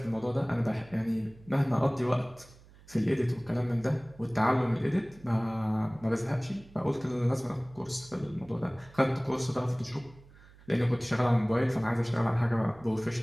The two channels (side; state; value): right; noise; hum, 24 dB below the sound